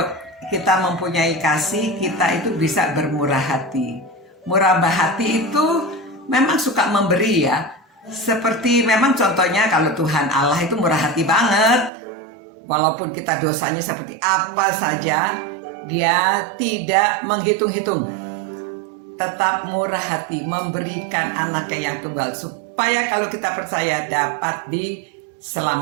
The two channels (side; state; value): left; drops out; at 11.9 s